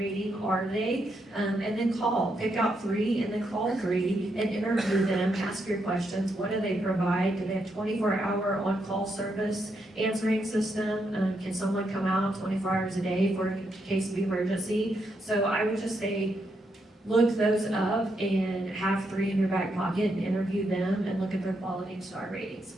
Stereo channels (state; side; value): normal; both; correlation 0.80